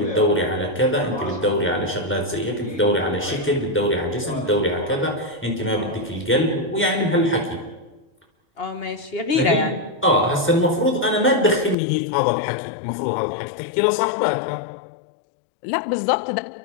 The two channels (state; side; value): drops out; right; at 11.8 s